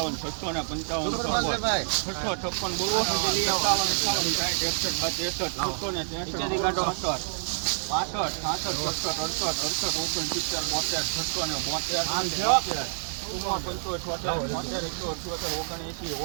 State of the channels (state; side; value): silent; left; 59 dB below the other